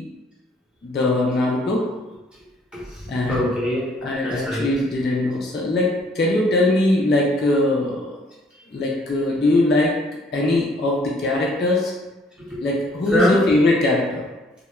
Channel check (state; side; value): normal; both; correlation 0.62